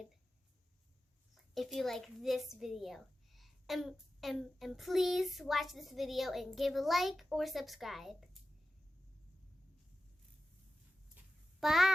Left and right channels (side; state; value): both; normal; correlation 0.93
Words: if you like this video. And please watch this video and give a like or subscribe.